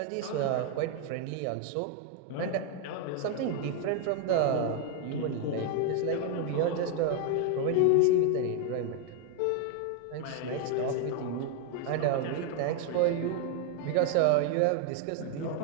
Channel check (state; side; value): different; both; correlation 0.01